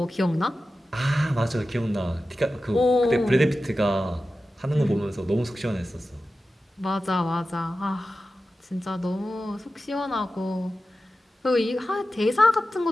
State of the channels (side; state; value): both; normal; correlation 0.93